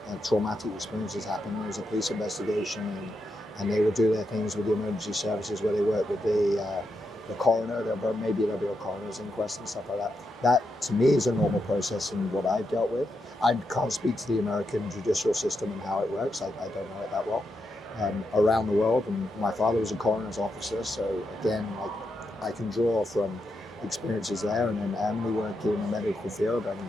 traumatic experience has happened. There's a police investigation, and they will do their things with the emergency services where they work with the coroner. Maybe there'll be a coroner's inquest and stuff like that. That to me is a normal process in what I've dealt with. I can't speak to the American judicial system and how it works. I don't know it that well. Around the world, and my father was a coroner's officer, so again, like, I can draw from experiences there, and then Emily working in the medical field and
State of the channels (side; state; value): both; normal; correlation 0.84